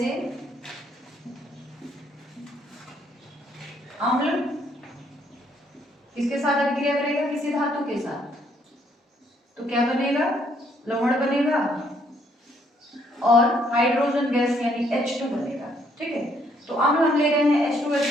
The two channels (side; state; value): both; normal; correlation 0.68